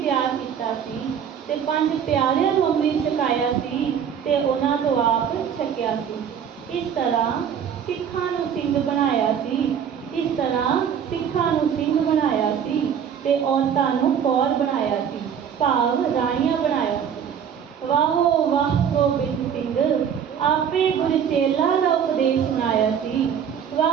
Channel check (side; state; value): left; quieter; 8.1 dB